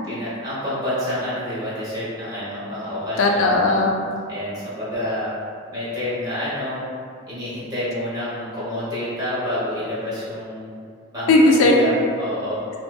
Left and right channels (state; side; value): normal; both; correlation 0.16